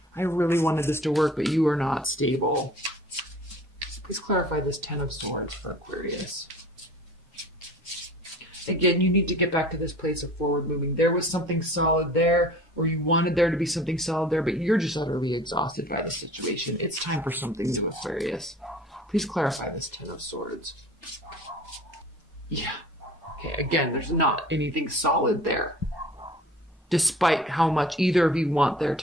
really wanted this to work, but you are not stable. Please clarify this Ten of Swords for Aquarius. Again, you need to get back to this place of forward moving. There was something solid there, or you wanted there to be something solid there, but you're just utterly exhausted by the situation. It's time for something new, Aquarius. Please clarify this Ten of Swords. Yeah. Okay, again, there's not anything solid there, despite how much either of you want there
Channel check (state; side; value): normal; both; correlation 0.45